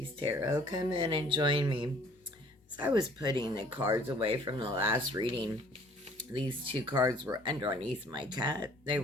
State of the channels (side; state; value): both; normal; correlation 0.56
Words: Tarot. Come in and join me. As I was putting the cards away from the last reading, these two cards were underneath my cat. They